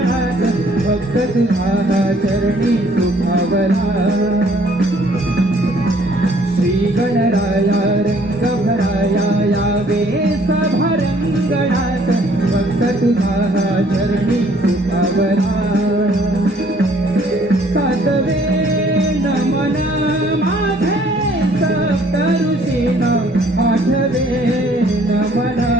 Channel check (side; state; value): both; normal; correlation 0.61